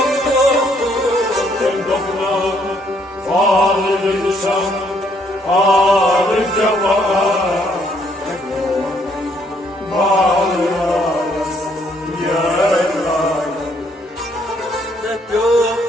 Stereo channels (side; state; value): both; normal; correlation 0.68